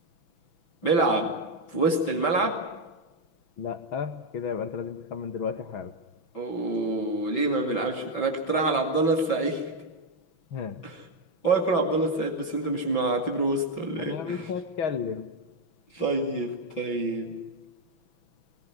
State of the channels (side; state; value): right; late; 6.1 ms